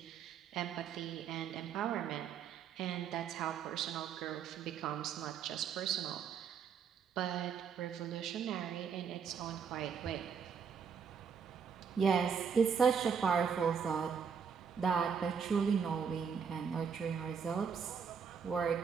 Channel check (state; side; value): quieter; left; 6.7 dB